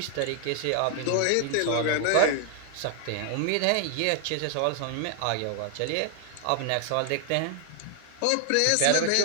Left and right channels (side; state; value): both; different; correlation 0.00